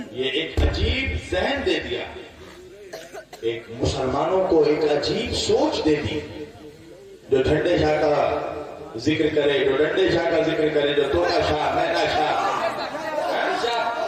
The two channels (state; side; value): identical; both; correlation 1.00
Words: مسلمانوں کو ایک عجیب سوچ دے دی۔ جو ٹھنڈے شاہ کا ذکر کرے، جو ڈنڈے شاہ کا ذکر کرے، جو توتا شاہ، مینا شاہ،